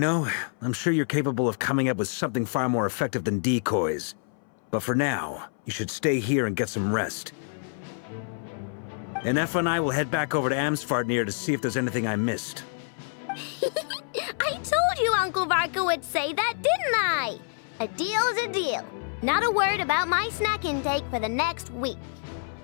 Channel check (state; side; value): silent; right; 60 dB below the other